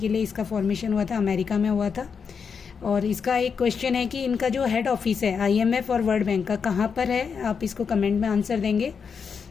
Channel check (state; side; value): quieter; right; 6.1 dB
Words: लिए इसका फॉर्मेशन हुआ था, अमेरिका में हुआ था. और इसका एक क्वेश्चन है कि इनका जो हेड ऑफिस है IMF और वर्ल्ड बैंक का कहाँ पर है. आप इसको कमेंट में आंसर देंगे.